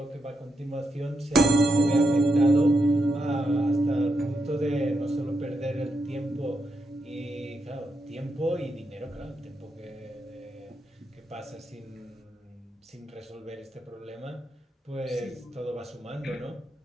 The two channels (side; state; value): both; normal; correlation 0.83